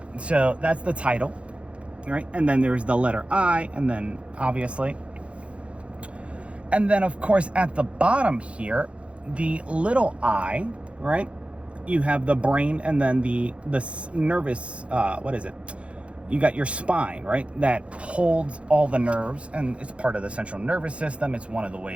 So, that's the title, right? And then there's the letter I, and then obviously. And then, of course, at the bottom here, the little I, right? You have the brain and then the nervous, you got your spine, right? That holds all the nerves, and it's part of the central nervous system. It's one of the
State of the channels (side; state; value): left; late; 0.061 ms